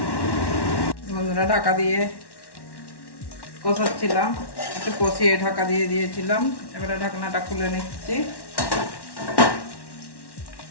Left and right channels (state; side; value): late; right; 1.1 ms